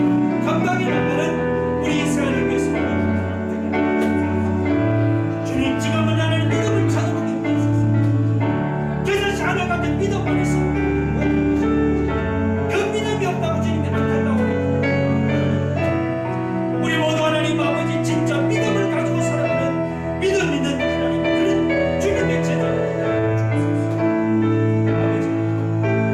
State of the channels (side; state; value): both; identical; correlation 1.00